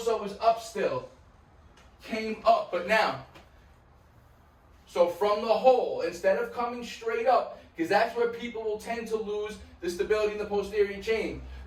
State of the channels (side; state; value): both; identical; correlation 1.00